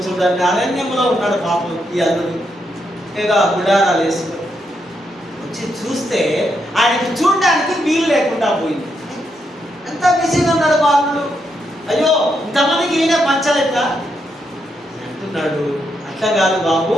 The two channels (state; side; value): normal; both; correlation 0.80